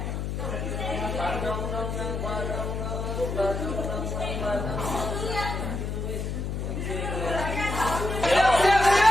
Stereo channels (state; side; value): noise; left; hum, 3 dB below the sound